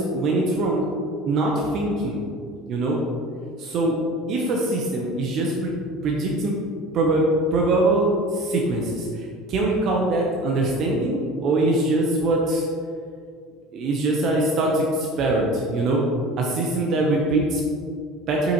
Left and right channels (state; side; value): normal; both; correlation 0.39